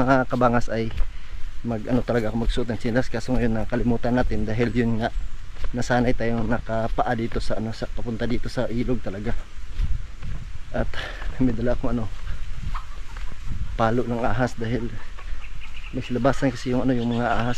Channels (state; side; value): identical; both; correlation 1.00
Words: kabangas ay ano talaga ako magsuot ng tsinelas. Kaso ngayon nakalimutan natin dahil yun nga, nasanay tayong nakapaa dito sa ano, papunta dito sa ilog talaga. At may dala akong ano, palo ng ahas dahil may silabasan kasi yung ano, yung mga